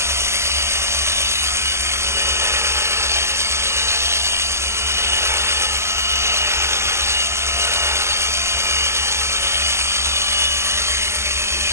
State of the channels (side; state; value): left; late; 0.13 ms